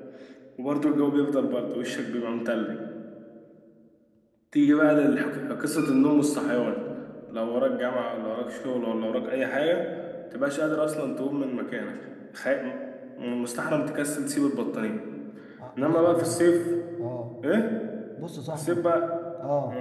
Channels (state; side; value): identical; both; correlation 1.00